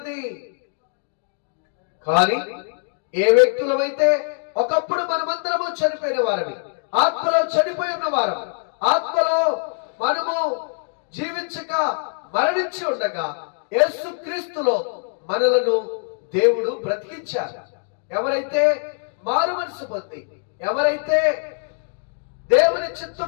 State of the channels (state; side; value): silent; right; 64 dB below the other